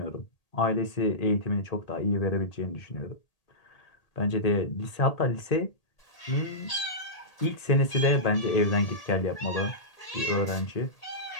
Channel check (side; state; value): right; late; 1.8 ms